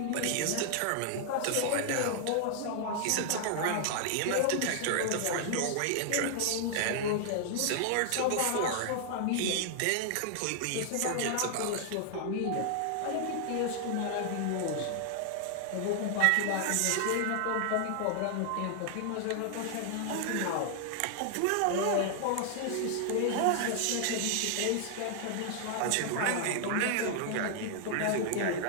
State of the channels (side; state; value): both; different; correlation 0.00